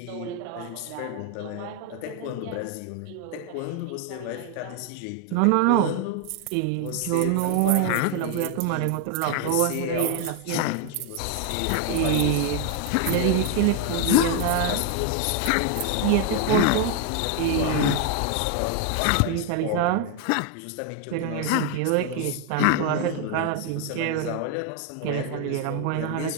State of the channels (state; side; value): different; both; correlation 0.01